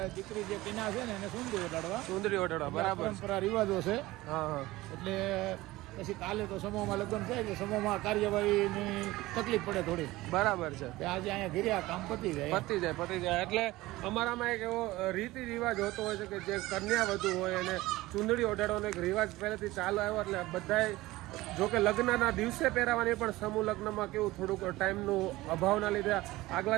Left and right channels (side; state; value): left; quieter; 18.6 dB